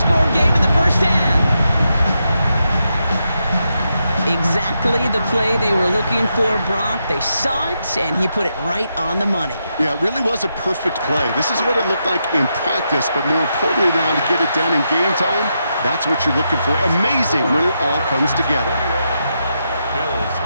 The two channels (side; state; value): both; inverted; correlation -0.84